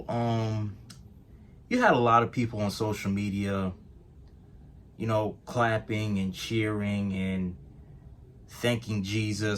You had a lot of people on social media, clapping and cheering and thanking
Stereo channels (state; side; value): identical; both; correlation 1.00